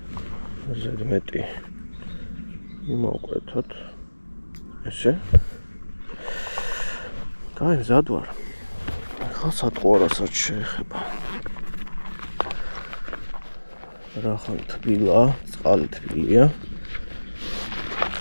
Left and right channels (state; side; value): inverted; both; correlation -1.00